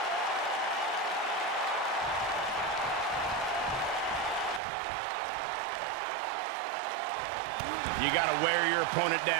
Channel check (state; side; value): drops out; left; at 4.6 s